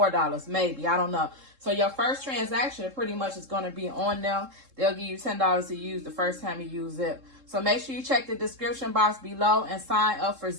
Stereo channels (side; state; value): left; late; 3.7 ms